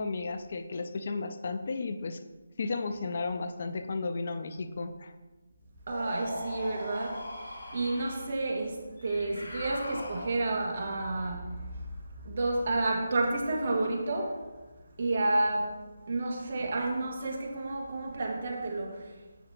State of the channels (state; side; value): inverted; both; correlation -0.88